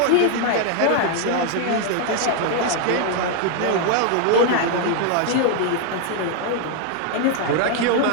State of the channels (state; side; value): different; both; correlation 0.00